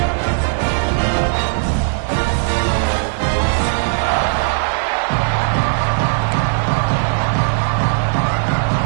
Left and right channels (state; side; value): silent; left; digital silence